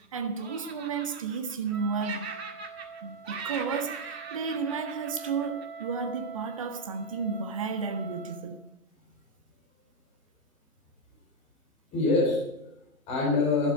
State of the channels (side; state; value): both; normal; correlation 0.03